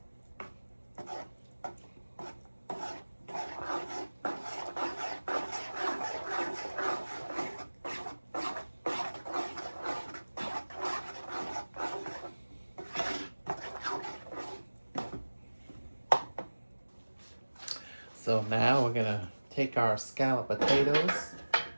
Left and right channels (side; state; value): both; inverted; correlation -1.00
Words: So now we're going to take our scalloped potatoes